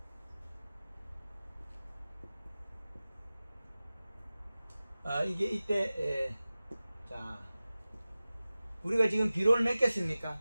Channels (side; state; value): both; inverted; correlation -0.97